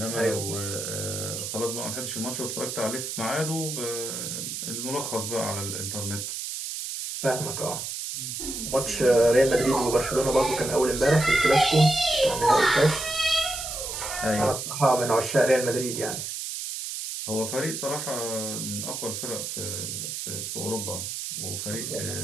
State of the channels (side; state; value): right; noise; hiss, 5 dB below the sound